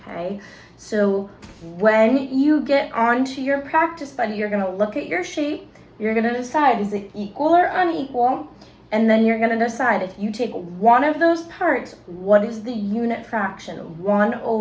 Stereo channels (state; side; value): identical; both; correlation 1.00